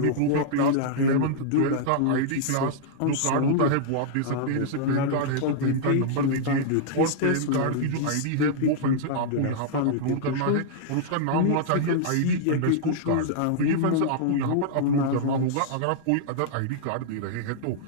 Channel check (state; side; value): different; both; correlation -0.01